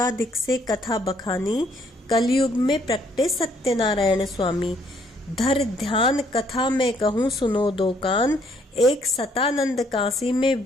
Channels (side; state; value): both; normal; correlation 0.67